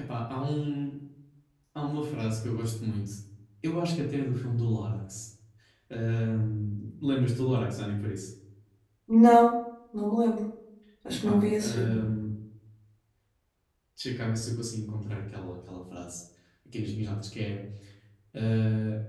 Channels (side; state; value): both; identical; correlation 1.00